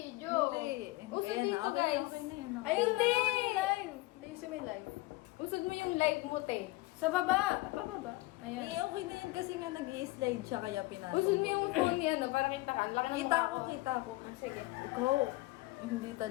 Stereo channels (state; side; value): quieter; right; 20.6 dB